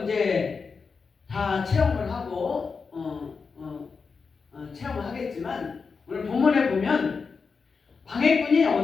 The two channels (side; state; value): right; quieter; 5.1 dB